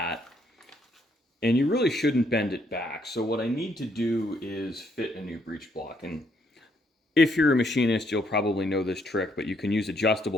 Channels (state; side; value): normal; both; correlation 0.71